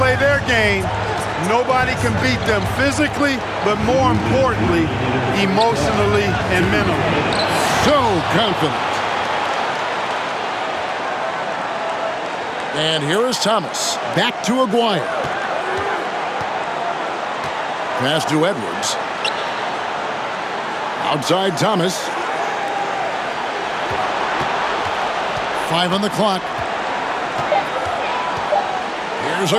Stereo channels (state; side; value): identical; both; correlation 1.00